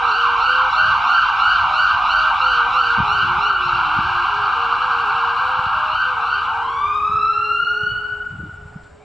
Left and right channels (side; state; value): both; normal; correlation 0.92